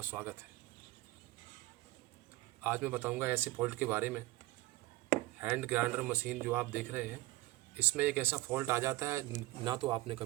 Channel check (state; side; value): quieter; left; 18.7 dB